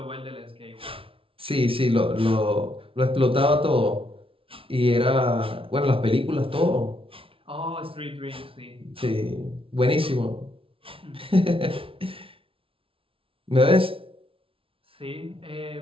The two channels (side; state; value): left; late; 0.26 ms